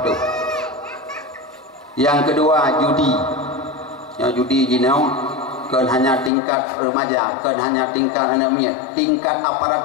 Yang kedua judi. Yang judi jinau kan hanya tingkat remaja, kan hanya tingkat anak miat, tingkat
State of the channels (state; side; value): drops out; right; at 6.3 s